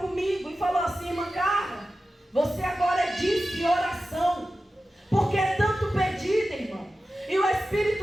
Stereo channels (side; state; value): both; normal; correlation 0.94